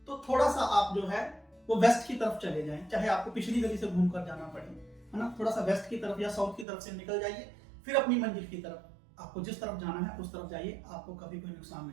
तो थोड़ा सा आप जो है वो वेस्ट की तरफ चले जाएं, चाहे आपको पिछली गली से घूमकर जाना पड़े, है ना। थोड़ा सा वेस्ट की तरफ या साउथ की तरफ से निकल जाइए, फिर अपनी मंजिल की तरफ, आपको जिस तरफ जाना है उस तरफ जाइए, आपको कभी कोई नुकसान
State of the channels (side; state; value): left; drops out; at 6.7 s